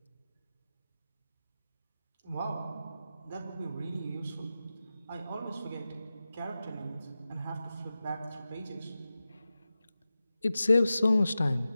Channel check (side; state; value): both; inverted; correlation -0.94